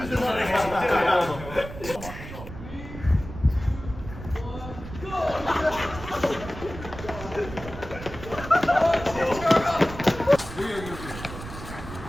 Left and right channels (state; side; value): noise; right; rumble, 12 dB below the sound